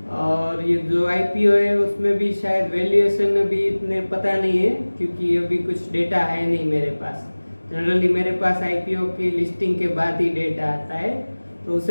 और ये जो आईपीओ है उसमें भी शायद वैल्यूएशन अभी इतने पता नहीं है, क्योंकि अभी कुछ डेटा है नहीं मेरे पास। जनरली मेरे पास आईपीओ की लिस्टिंग के बाद ही डेटा आता है, तो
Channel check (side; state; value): both; inverted; correlation -1.00